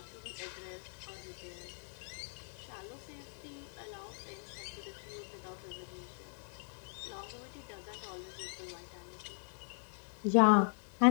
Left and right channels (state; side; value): silent; right; 52 dB below the other